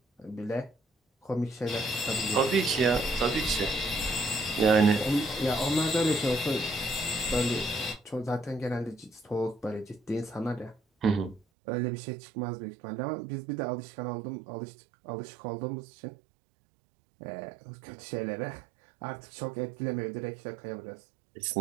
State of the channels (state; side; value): drops out; left; at 11.4 s